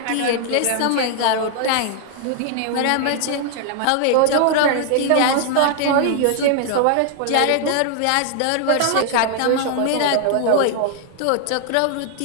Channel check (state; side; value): different; both; correlation 0.00